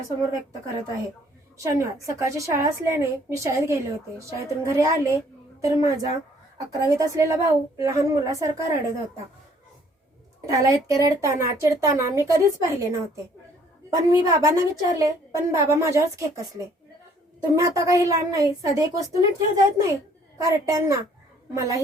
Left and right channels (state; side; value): normal; both; correlation 0.61